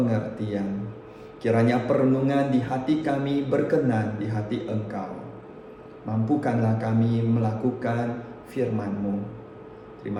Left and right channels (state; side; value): identical; both; correlation 1.00